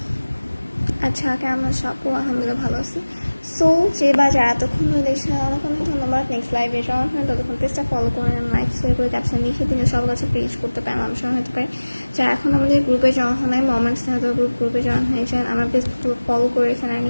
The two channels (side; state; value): both; inverted; correlation -1.00